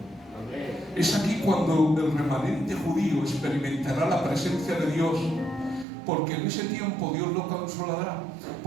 Es aquí cuando el remanente judío experimentará la presencia de Dios, porque en ese tiempo Dios lo consolará.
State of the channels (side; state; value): left; drops out; at 5.9 s